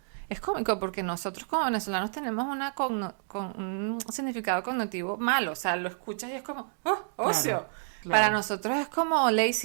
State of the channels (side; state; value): left; silent; digital silence